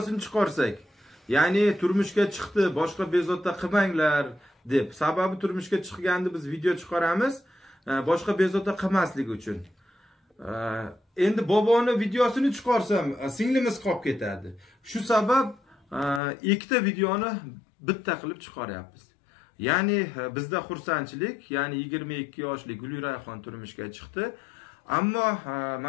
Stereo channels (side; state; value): right; drops out; at 16.2 s